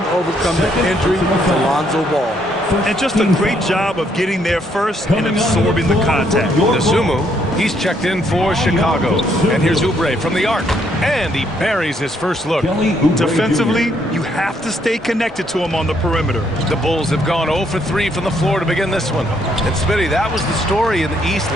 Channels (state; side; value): normal; both; correlation 0.71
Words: overcome the injury to Lonzo Ball. And just a great job of getting there first and absorbing the contact. Dosunmu, he's checked in for Chicago. And here's Oubre from the arc. And he buries his first look. Defensively, you have to stay connected to him on the perimeter. The Bulls have gone 0 for 3 from the floor to begin this one. And Smitty, that was the story in the East